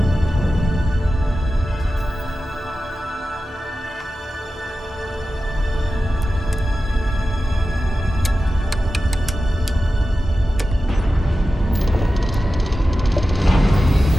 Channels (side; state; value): both; normal; correlation 0.93